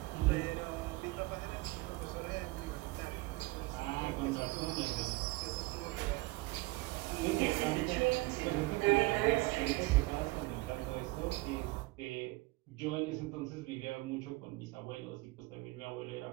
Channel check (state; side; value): quieter; left; 22.0 dB